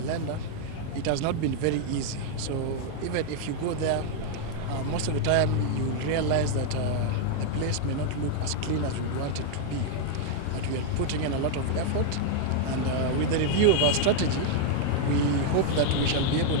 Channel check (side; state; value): both; different; correlation 0.00